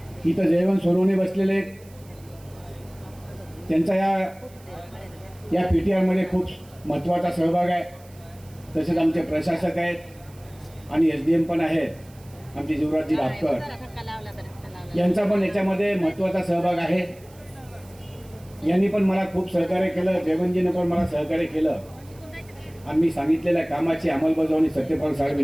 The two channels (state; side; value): noise; right; hiss, 26 dB below the sound